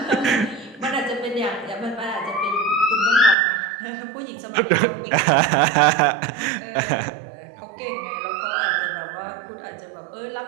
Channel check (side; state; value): left; drops out; at 3.4 s